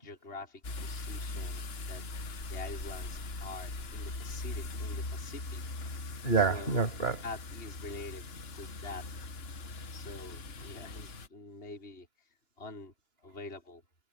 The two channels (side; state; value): right; late; 2.9 ms